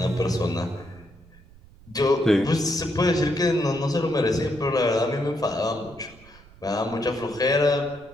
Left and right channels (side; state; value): right; noise; rumble, 24 dB below the sound